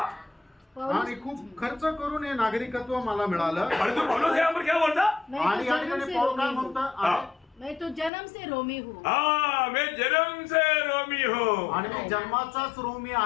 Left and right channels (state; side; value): drops out; right; at 8.1 s